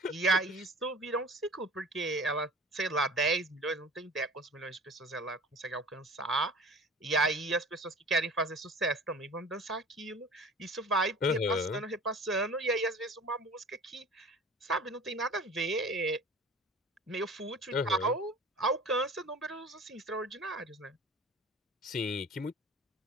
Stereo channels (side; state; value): both; normal; correlation 0.42